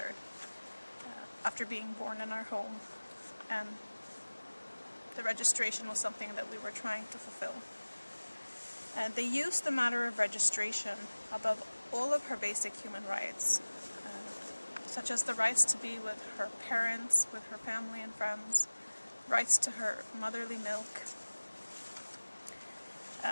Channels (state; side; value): inverted; both; correlation -1.00